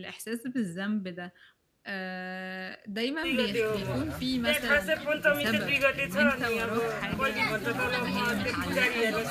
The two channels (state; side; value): identical; both; correlation 1.00